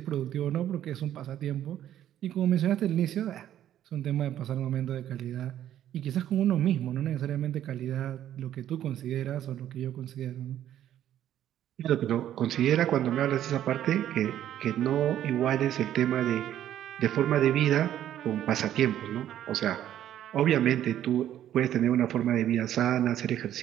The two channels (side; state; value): left; quieter; 11.5 dB